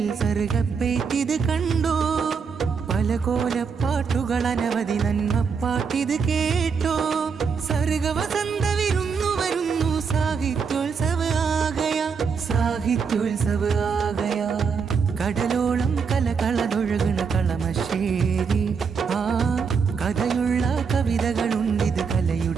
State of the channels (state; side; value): quieter; left; 5.9 dB